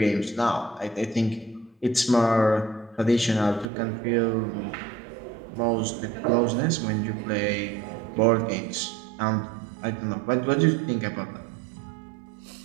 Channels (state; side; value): drops out; left; at 3.7 s